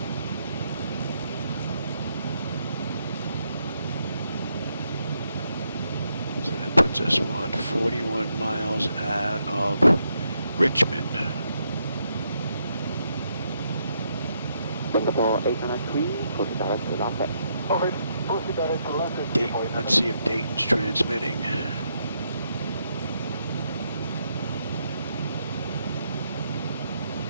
So that puts us, what, 41 miles out of Richmond. Singapore 893, proceed direct to Lambeth. Alright, proceed direct to Lambeth. Dayton, let's see if Dayton's transmitting.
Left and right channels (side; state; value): both; inverted; correlation -0.78